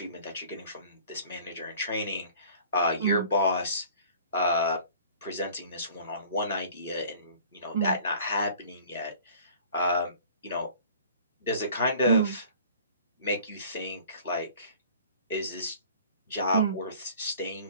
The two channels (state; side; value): inverted; both; correlation -0.48